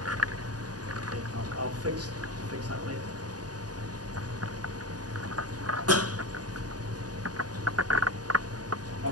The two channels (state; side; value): late; left; 0.68 ms